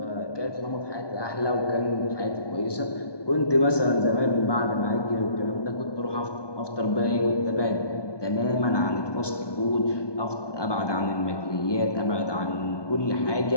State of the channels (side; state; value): right; late; 1.2 ms